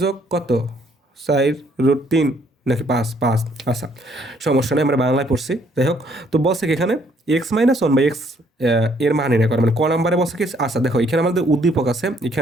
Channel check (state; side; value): normal; both; correlation 0.66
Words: যোগ কত 4√3 নাকি 5 আচ্ছা, সমস্যা নেই, আমরা বাংলায় পড়ছি। যাই হোক, তো বলছে কি এখানে x minus one by x এর মান নির্ণয় করে, মানে ক নাম্বারে বলছে কি। আচ্ছা দেখো, এখানে আমাদের উদ্দীপক আছে,